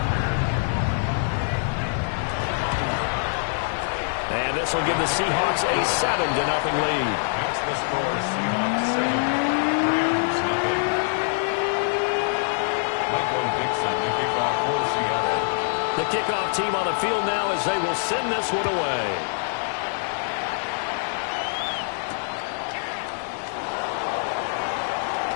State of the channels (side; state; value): right; silent; 62 dB below the other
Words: And this This will give the Seahawks a 7-0 lead. That's the score. Seahawks 7, Rams nothing. Michael Dixon, the kickoff for Seattle. The kickoff team on the field now as they will send this one away.